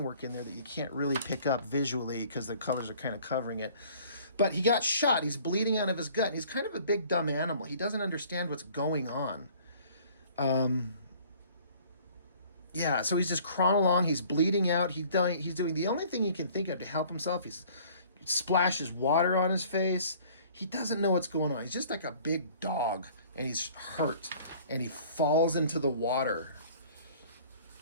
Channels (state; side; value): inverted; both; correlation -0.53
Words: work in there that you can't really pick up visually because the colors are kind of covering it. But he got shot. He's bleeding out of his gut. And he's kind of a big, dumb animal. He doesn't understand what's going on. Yeah, so he's just crawling along. He's bleeding out. He's doing the only thing he can think of to help himself. He splashes water on his face. he doesn't know what's going on. He's just like a big dog, and he's hurt, and he falls into the water.